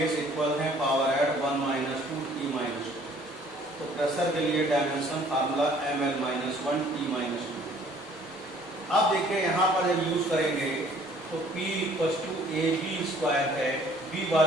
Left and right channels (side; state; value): right; noise; rumble, 30 dB below the sound